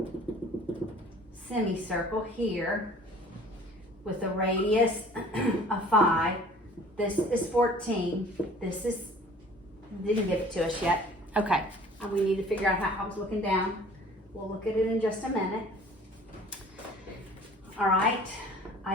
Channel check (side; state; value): both; normal; correlation 0.49